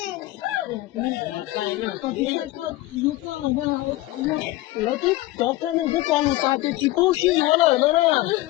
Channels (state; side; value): quieter; right; 17.9 dB